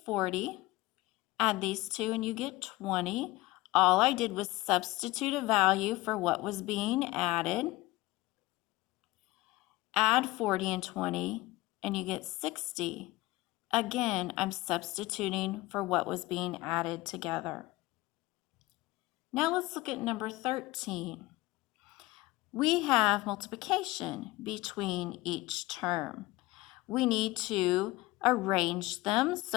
40. Add these two and you get 20. All I did was substitute a value for what was being added. add 40 and 20, and you get 60. Again, I'm substituting for what was being added together. Now let's look at number 13. We have multiplication between each term. We need to arrange them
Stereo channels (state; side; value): quieter; right; 20.0 dB